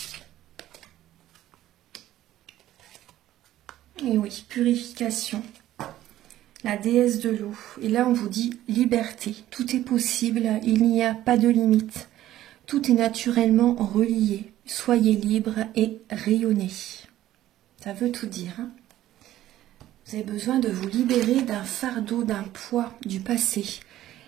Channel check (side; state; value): left; quieter; 13.7 dB